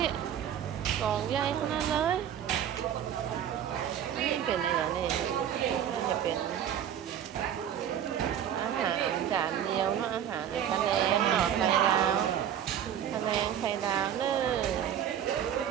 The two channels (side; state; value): left; quieter; 9.7 dB